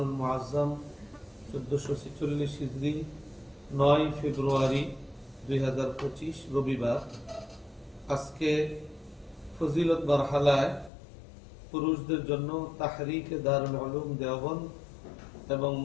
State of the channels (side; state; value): right; drops out; at 10.9 s